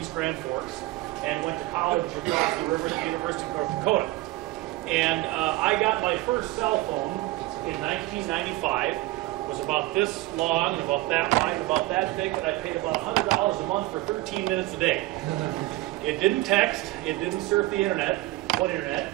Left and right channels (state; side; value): quieter; left; 18.5 dB